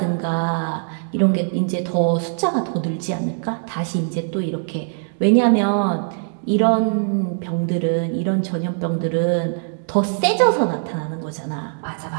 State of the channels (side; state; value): left; silent; digital silence